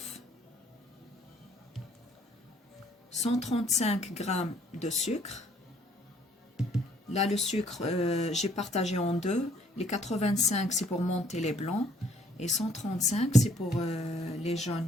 135 g de sucre. Là, le sucre, j'ai partagé en deux. Les 85, c'est pour monter les blancs. Et 135, c'est pour les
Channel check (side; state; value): both; normal; correlation 0.63